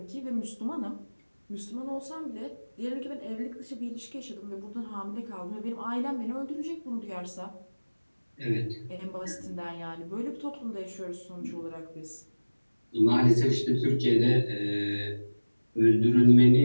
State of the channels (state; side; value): inverted; both; correlation -1.00